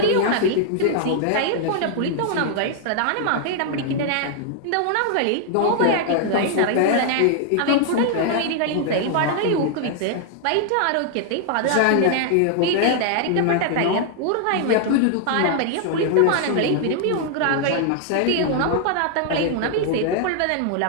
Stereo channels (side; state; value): both; different; correlation 0.00